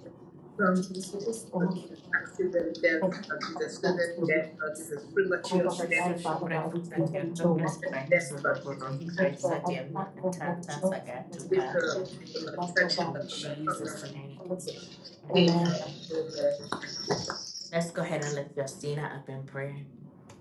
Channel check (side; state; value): both; identical; correlation 1.00